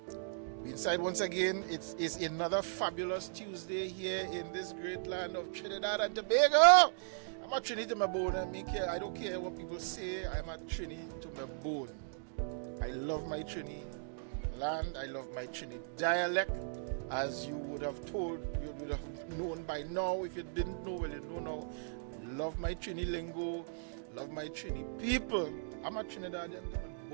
We inside once again. It's another fabulous Tuesday here in this great land of Trinidad and Tobago. I'm a Trini to my bone. I don't care what people say. I'm a Trini to my bone. I love my Trini land. I love my Trini dialect. As you would have known by now. If you didn't know, well, you know now. Love my Trini lingo. Love my Trini people. I'm a Trinidadian to my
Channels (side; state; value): left; silent; digital silence